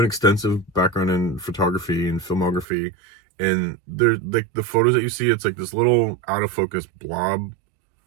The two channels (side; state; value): left; drops out; at 2.7 s